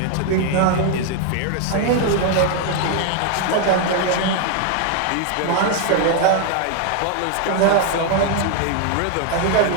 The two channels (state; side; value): different; both; correlation 0.00